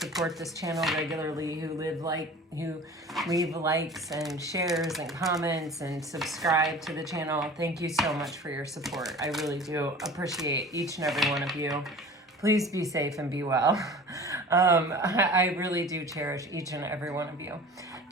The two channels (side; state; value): both; normal; correlation 0.41